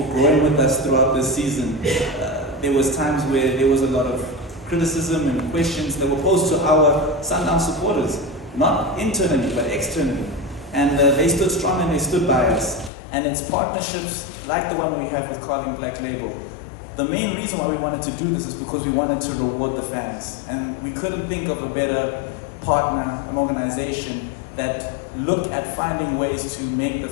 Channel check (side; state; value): right; drops out; at 12.9 s